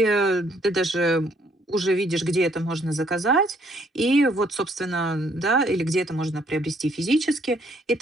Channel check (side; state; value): both; normal; correlation 0.66